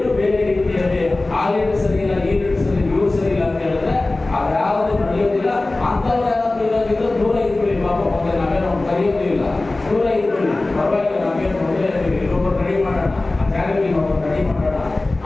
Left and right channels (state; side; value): quieter; right; 3.0 dB